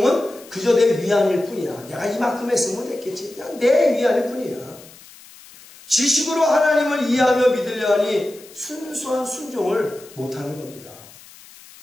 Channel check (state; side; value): noise; left; hiss, 21 dB below the sound